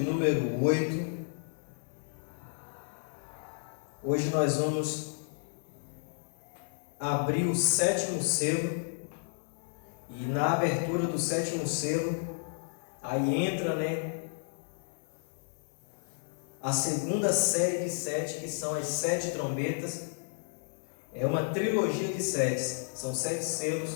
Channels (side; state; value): right; silent; 56 dB below the other